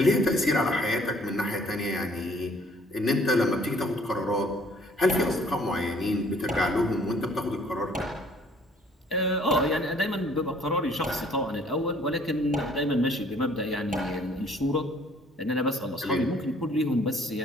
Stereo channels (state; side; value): normal; both; correlation 0.58